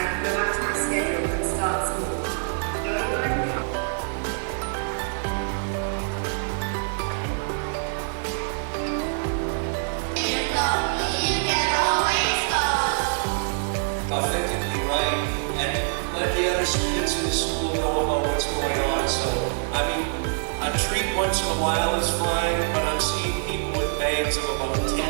can go back to my schedule and start school. Authentically right, and let the other students in the school know about what's going on. So, I mean, a treat once in a while is fine, but I'm seeing people with bags of about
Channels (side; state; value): left; silent; 62 dB below the other